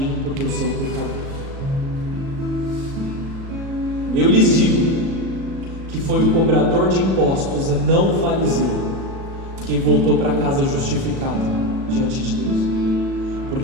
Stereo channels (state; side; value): late; left; 37 ms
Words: porque eu sou pecador. Eu lhes digo que foi o cobrador de impostos e não o fariseu quem voltou para casa justificado diante de Deus,